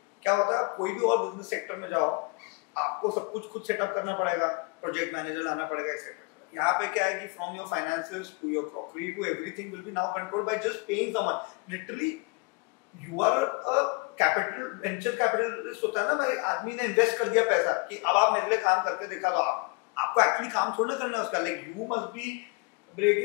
क्या होता है, कोई भी और बिजनेस सेक्टर में जाओ, आपको सब कुछ खुद सेटअप करना पड़ेगा, प्रोजेक्ट मैनेजर लाना पड़ेगा, एक्सेट्रा. यहाँ पे क्या है कि from your finances to your crockery to everything will be now controlled by just paying someone. Literally you are a capital, venture capitalist होता है ना, भाई आदमी ने इन्वेस्ट कर दिया पैसा कि अब आप मेरे लिए काम करके दिखा दो. आपको एक्चुअली काम थोड़ा करना है उसका. Like you must be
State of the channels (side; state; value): right; quieter; 29.4 dB